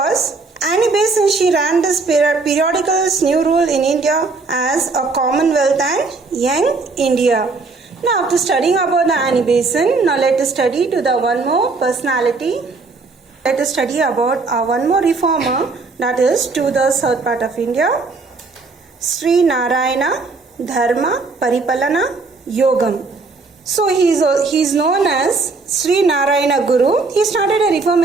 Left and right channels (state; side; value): quieter; left; 4.0 dB